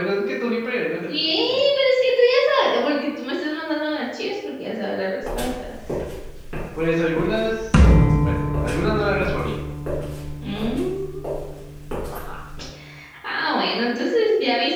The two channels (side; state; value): both; identical; correlation 1.00